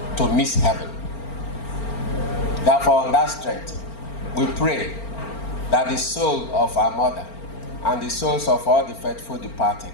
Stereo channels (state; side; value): late; right; 4.4 ms